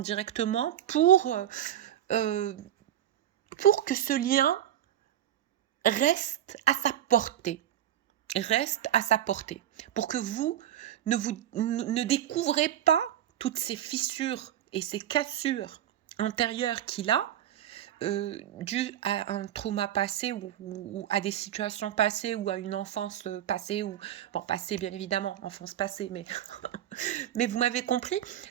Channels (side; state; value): left; quieter; 11.4 dB